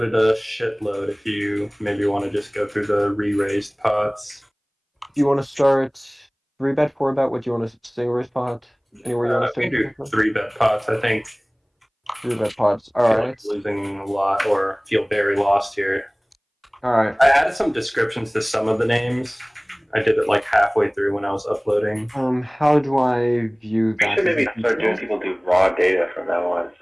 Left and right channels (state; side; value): identical; both; correlation 1.00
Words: a shitload. If you maybe want to just go through the re-raised pots. Do you want to start 3-bet, 4-bet? What do you want to single raise pot? Anywhere you want to We can start? do 3-bet pots. I think 3-bet pots. All I feel right. like losing a lot or feel very lost here. All right. I added some descriptions to some of the names. I did it like halfway through when I was uploading. How do I view We that? should Is maybe it start doing detailed? people do raw data from now on,